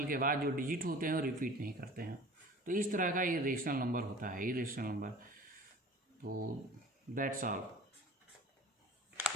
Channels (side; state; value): both; normal; correlation 0.44